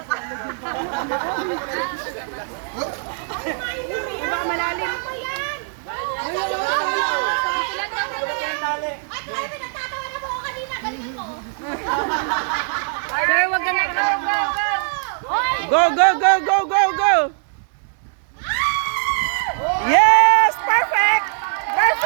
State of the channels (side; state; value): left; silent; digital silence